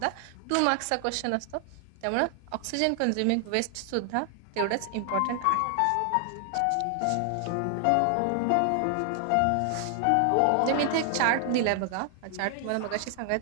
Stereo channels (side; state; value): both; different; correlation 0.00